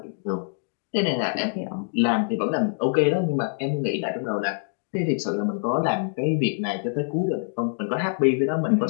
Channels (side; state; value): right; silent; digital silence